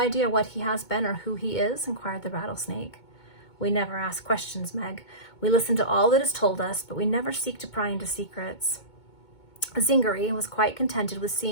what he has been or who he is?" inquired the rattlesnake. We never ask questions, Meg. We listen to all that is told us, but we never seek to pry into secrets. Zingari was quite contented with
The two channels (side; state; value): right; late; 2.2 ms